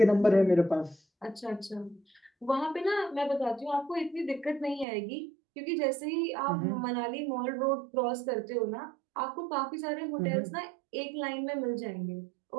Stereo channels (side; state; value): left; drops out; at 4.9 s